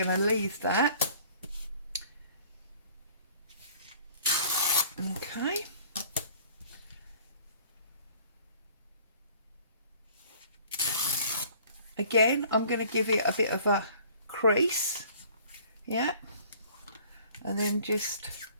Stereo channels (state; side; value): inverted; both; correlation -0.53